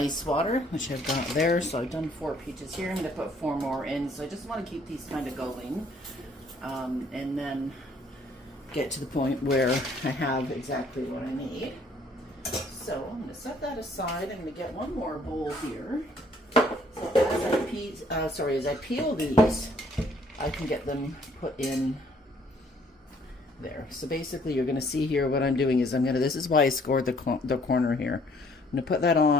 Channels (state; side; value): normal; both; correlation 0.62